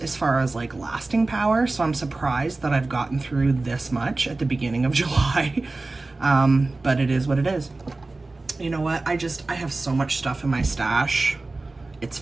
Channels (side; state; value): left; quieter; 3.3 dB